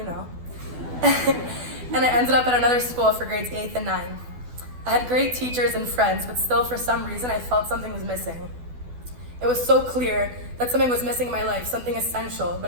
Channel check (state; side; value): late; left; 12 ms